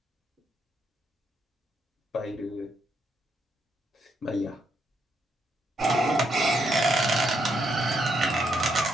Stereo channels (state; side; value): normal; both; correlation 0.77